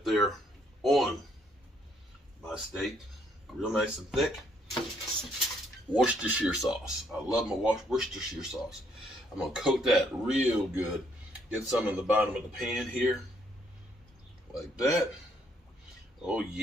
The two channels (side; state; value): both; normal; correlation 0.69